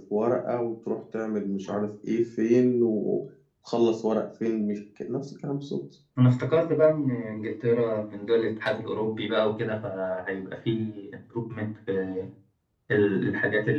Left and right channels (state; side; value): identical; both; correlation 1.00